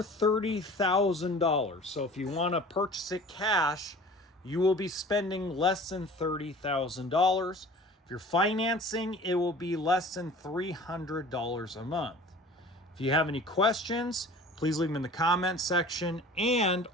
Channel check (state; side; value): normal; both; correlation 0.44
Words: $30,000. So if you want to purchase it cash, you will be spending less than $30,000. If you're financing, it will be less than $300 a month. If you have any questions, please leave them in the comments section. And